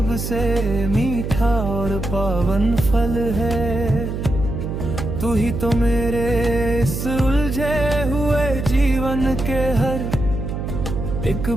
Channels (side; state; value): right; noise; hum, 4 dB below the sound